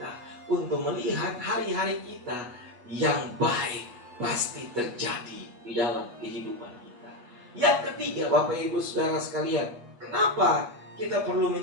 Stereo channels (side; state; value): left; late; 8.1 ms